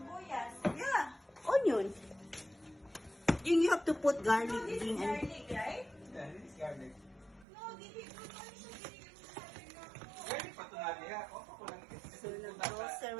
Yeah. Onion. And you have to put garlic. No, this is Gigi. garlic, right? yeah, this is garlic. No, dili ko ano siya ginigil mo sa akin na ako. Garlic pa ito nga niya. Opo ko lang. So,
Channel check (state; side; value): drops out; left; at 7.5 s